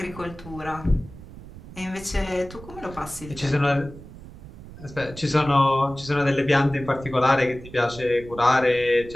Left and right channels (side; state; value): right; noise; rumble, 16 dB below the sound